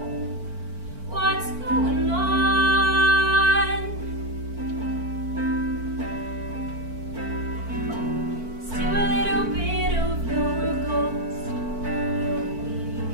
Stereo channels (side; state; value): left; late; 4.5 ms